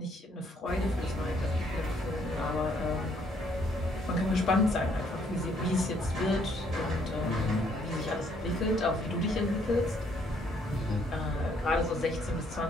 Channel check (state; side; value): normal; both; correlation 0.67